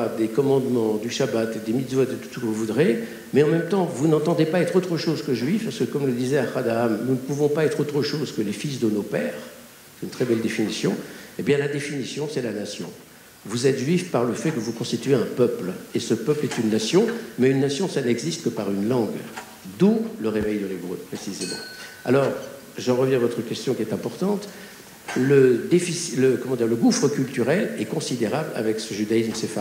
des commandements, du Shabbat, des mitzvot, de tout ce que vous voudrez, mais en même temps, vous n'entendez pas être autre chose que juif, parce que, comme le disait Ahad Haham, nous ne pouvons pas être autre chose que les fils de nos pères, c'est une très belle définition, eh bien la définition, c'est la nation. Vous êtes juif par le fait que vous constituez un peuple, et ce peuple est une nation, mais une nation, ça n'existe que par une langue, d'où le réveil de l'hébreu, précisément. Alors, j'en reviens à votre question qui est importante. Le gouffre culturel est considérable avec ce judaïsme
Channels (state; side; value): identical; both; correlation 1.00